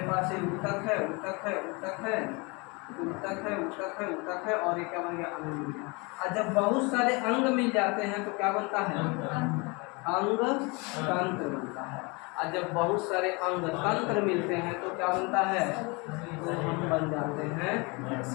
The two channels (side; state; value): right; quieter; 28.4 dB